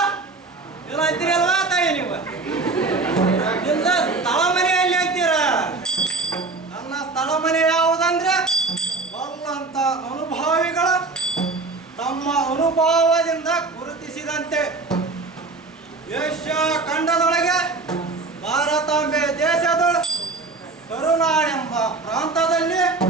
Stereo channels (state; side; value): quieter; left; 3.7 dB